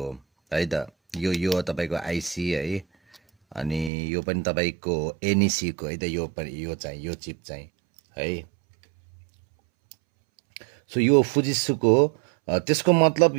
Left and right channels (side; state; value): left; drops out; at 3.9 s